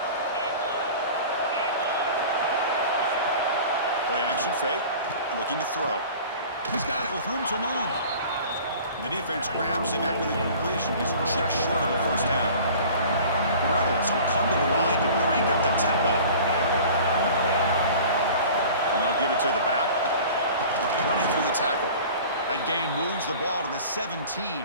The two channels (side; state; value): both; inverted; correlation -0.43